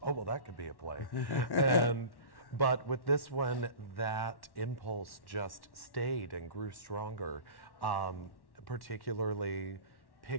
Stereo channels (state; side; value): late; right; 1.1 ms